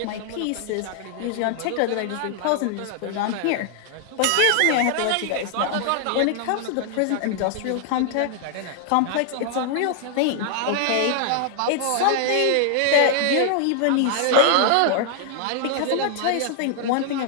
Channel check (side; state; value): both; different; correlation 0.00